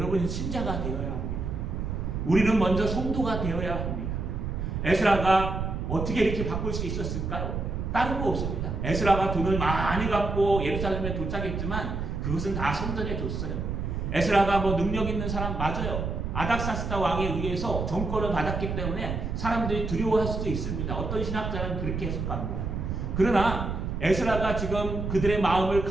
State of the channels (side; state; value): right; noise; rumble, 3 dB below the sound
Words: 신자가 되어야 합니다. 우리는 먼저 성도가 되어야 합니다. 에스라가 어떻게 이렇게 바꿀 수 있었을까요? 다른 거 없습니다. 에스라가 돈을 많이 갖고 예루살렘에 도착했지만 그것은 다 성전에 줬어요. 에스라가 뭐 능력 있는 사람 맞아요. 아닥사스다 왕에 의해서 정권을 받았기 때문에 사람들이 두려워할 수도 있습니다. 어떤 신학자는 그렇게 해석합니다. 그러나 에스라가 지금 그들의 마음을